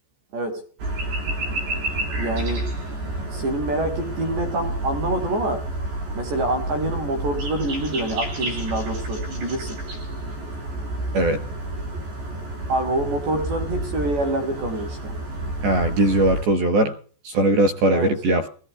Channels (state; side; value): late; left; 14 ms